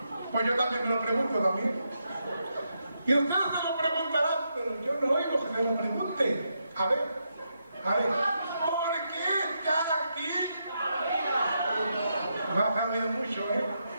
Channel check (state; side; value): inverted; both; correlation -0.82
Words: Pues yo también me lo pregunto también. Y ustedes se lo preguntarán, pero yo no oigo que se lo pregunten. A ver, ¿por qué está aquí? No has oído mucho, ¿eh?